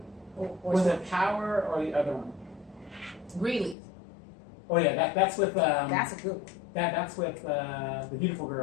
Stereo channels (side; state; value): right; drops out; at 3.8 s